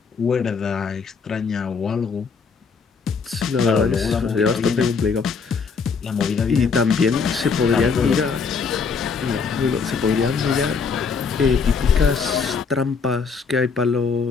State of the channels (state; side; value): quieter; right; 5.3 dB